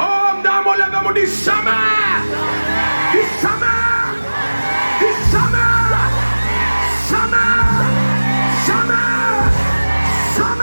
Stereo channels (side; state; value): both; inverted; correlation -1.00